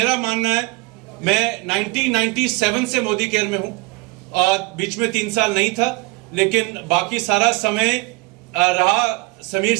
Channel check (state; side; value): quieter; left; 25.4 dB